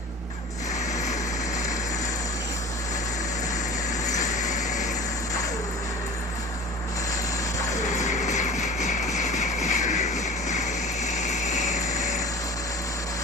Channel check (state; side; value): normal; both; correlation 0.39